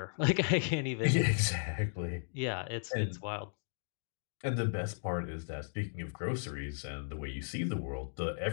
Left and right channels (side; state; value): right; silent; digital silence